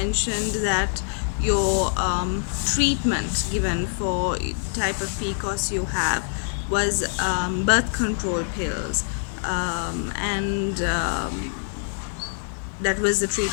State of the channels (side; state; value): right; silent; 57 dB below the other